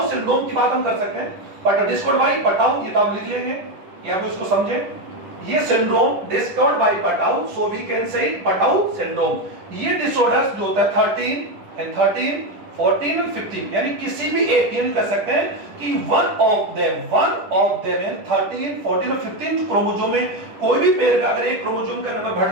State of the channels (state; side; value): late; left; 10 ms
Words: सिंड्रोम की बात हम कर सकते हैं, बट डिस्कवर्ड बाय पटाउ, ये तो आप लिख लेंगे या आप इसको समझें। ये syndrome discovered by Patau, so we can say Patau syndrome. ये डिसऑर्डर्स जो होता है 13, 14 और 15, यानी किसी भी एक ये कर सकते हैं कि वन ऑफ देम यानी 13, 14 और 15 जो क्रोमोसोम में कोई भी पेयर का अगर एक क्रोमोसोम का नंबर